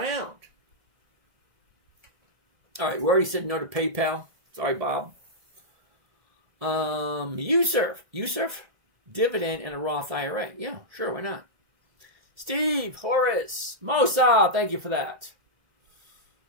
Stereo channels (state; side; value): late; left; 1.7 ms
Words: All right, we already said no to PayPal. Sorry, Bob. USURF, Dividend, and a Roth IRA. Yeah, sure, why not? Steve, Horace, Mosa, thank you for that.